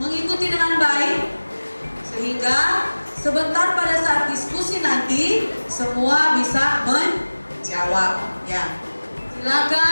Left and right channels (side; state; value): both; inverted; correlation -1.00